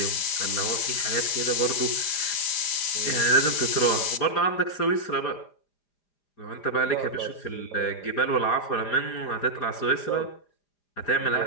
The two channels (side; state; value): right; late; 4.9 ms